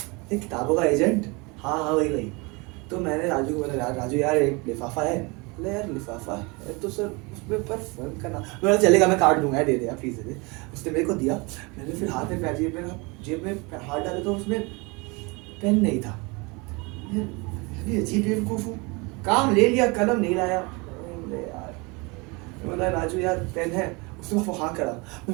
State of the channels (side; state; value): left; quieter; 27.7 dB